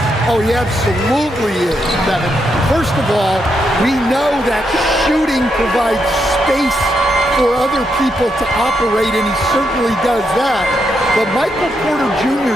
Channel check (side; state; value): both; normal; correlation 0.81